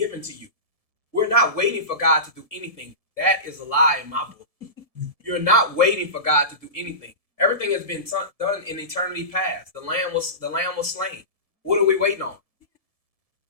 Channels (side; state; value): right; late; 1.7 ms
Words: to you. We're not waiting for God to do anything. That is a lie in my book. You're not waiting for God to do anything. Everything has been done in eternity past. The lamb was slain. What are we waiting on?